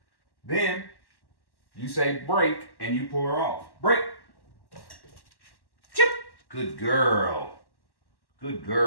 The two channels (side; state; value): right; late; 1.1 ms